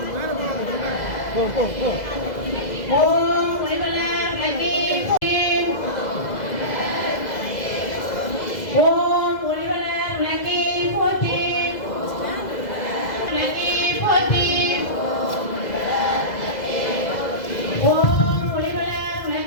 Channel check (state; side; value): late; right; 2.0 ms